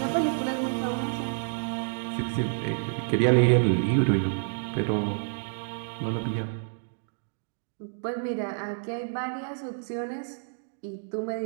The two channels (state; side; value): silent; left; digital silence